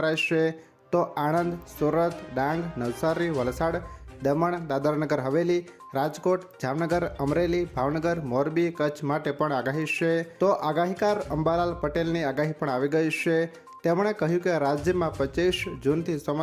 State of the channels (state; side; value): identical; both; correlation 1.00